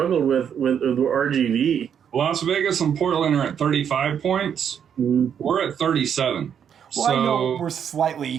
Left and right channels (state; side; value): quieter; left; 8.2 dB